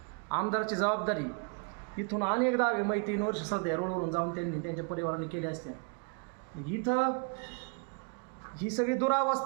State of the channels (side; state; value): left; quieter; 38.0 dB